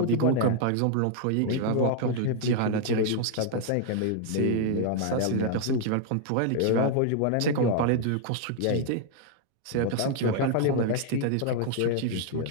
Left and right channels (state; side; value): different; both; correlation 0.00